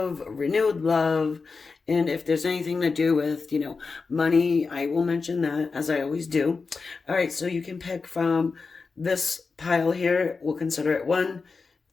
renewed love, and if there's anything to do with, money, I will mention that as I always do. All right, so you can pick from this pile here. We'll consider it 1,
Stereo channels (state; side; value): quieter; right; 4.5 dB